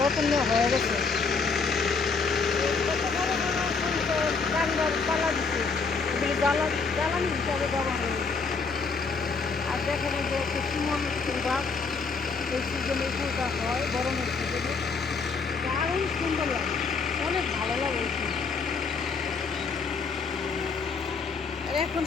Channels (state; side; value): quieter; right; 4.8 dB